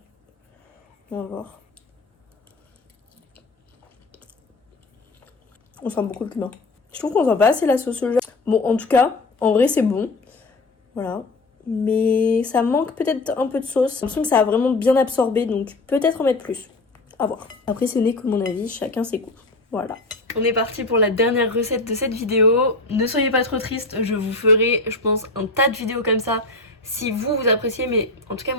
On va voir. On sent beaucoup le cumin. Je trouve qu'on sent pas assez la sauce soja. Bon, en tout cas, en vrai, c'est bon. Voilà. Mais ça manque peut-être un peu de sauce. J'ai l'impression que ça a vraiment bien absorbé, donc peut-être en mettre plus. À voir. Après, ce n'est que mon avis, chacun ses goûts. Voilà. On est parti pour la dernière recette de cette vidéo. Ne soyez pas trop tristes, je vous ferai, je pense, un tas de vidéos comme ça si vous appréciez. Mais en tout cas,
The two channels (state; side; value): quieter; right; 3.1 dB